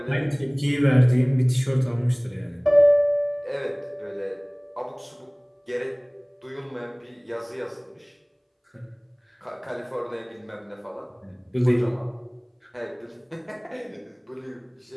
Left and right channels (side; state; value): both; identical; correlation 1.00